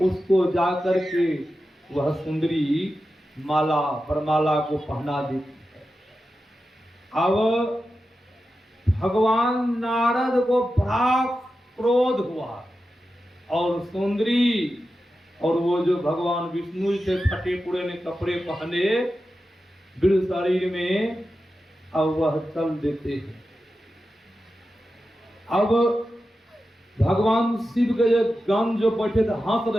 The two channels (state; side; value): normal; both; correlation 0.91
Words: जा करके वह सुंदरी माला वरमाला को पहना देती है। अब भगवान नारद को बड़ा क्रोध हुआ, और सुंदरी और वो जो भगवान विष्णु से फटे पुराने कपड़े पहने बिल शरीर में, अब वह चल देते हैं। अब भगवान शिव के जो गण जो बैठे थे हंस